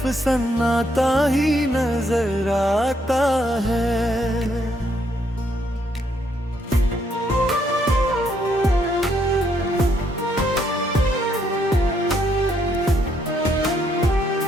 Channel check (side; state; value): both; normal; correlation 0.73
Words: सन्नाटा ही नजर आता है।